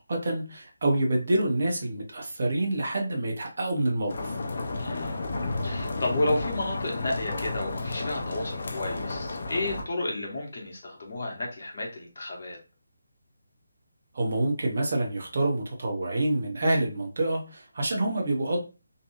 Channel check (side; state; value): both; inverted; correlation -0.87